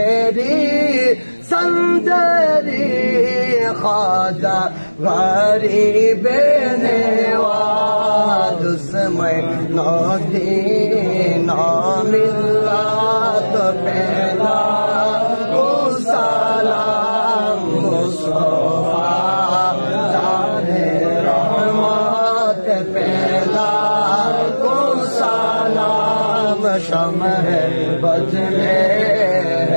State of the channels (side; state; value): both; inverted; correlation -1.00